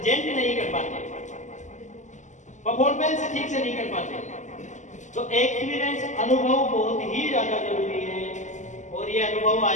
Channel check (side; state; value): right; late; 0.35 ms